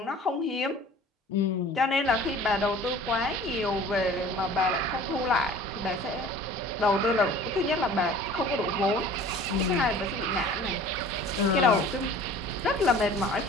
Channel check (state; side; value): normal; both; correlation 0.46